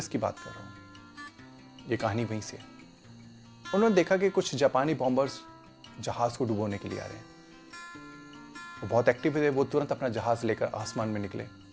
की बात कर रहा हूँ, ये कहानी वहीं से है। उन्होंने देखा कि कुछ जापानी बॉम्बर्स जहाज को डुबोने के लिए आ रहे हैं। वो बहुत एक्टिव थे। वो तुरंत अपना जहाज लेकर आसमान में निकले, और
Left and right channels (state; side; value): identical; both; correlation 1.00